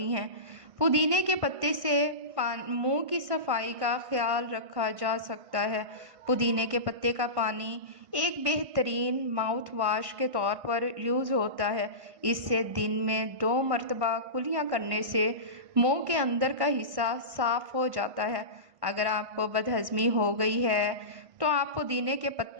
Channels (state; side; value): late; left; 1.5 ms